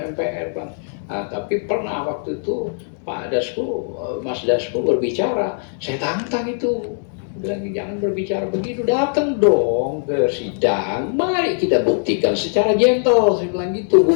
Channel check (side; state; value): right; silent; 65 dB below the other